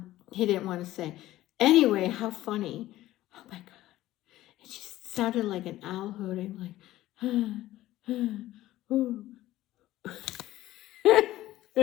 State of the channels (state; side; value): quieter; right; 15.4 dB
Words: He didn't want to say. Anyway, how funny. Oh my God. It just sounded like an owl hooting, like, ooh.